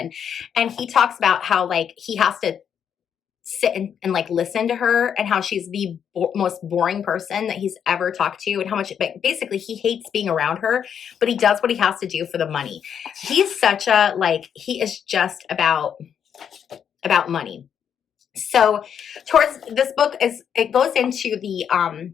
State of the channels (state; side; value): quieter; right; 8.2 dB